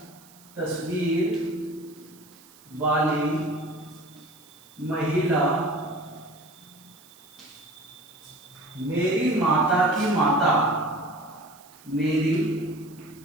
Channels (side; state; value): right; noise; hiss, 24 dB below the sound